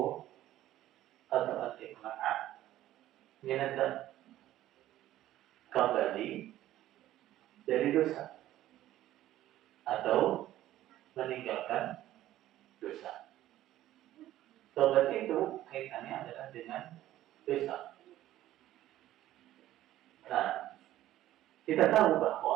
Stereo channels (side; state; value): left; quieter; 13.9 dB